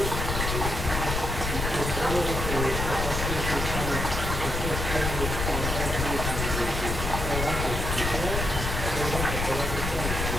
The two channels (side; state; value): left; noise; rumble, 2 dB below the sound